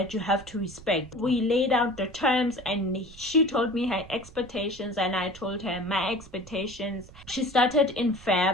you have to respect. We laid out the terms and she told me her expectations and I told her my expectations. She started in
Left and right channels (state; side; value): noise; right; rumble, 20 dB below the sound